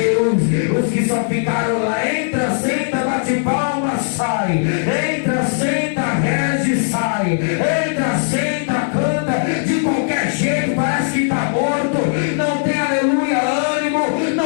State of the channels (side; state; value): right; silent; digital silence